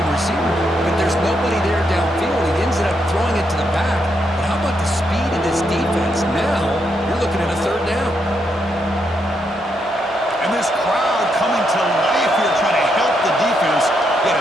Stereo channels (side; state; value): both; normal; correlation 0.79